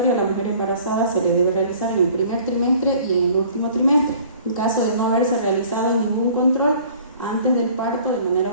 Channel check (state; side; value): inverted; both; correlation -0.52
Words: a la mujer embarazada se le debe realizar en el primer trimestre y en el último trimestre. En caso de no haberse realizado ningún control, antes del parto, de manera